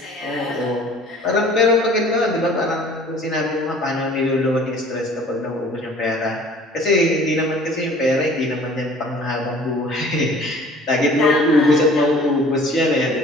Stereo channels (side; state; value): both; normal; correlation 0.50